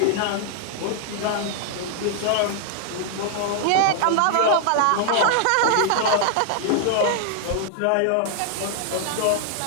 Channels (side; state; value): both; different; correlation 0.00